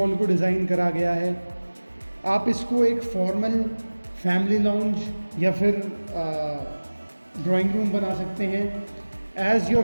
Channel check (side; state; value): both; inverted; correlation -1.00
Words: को डिज़ाइन करा गया है। आप इसको एक फॉर्मल फैमिली लाउंज या फिर ड्राइंग रूम बना सकते हैं। As your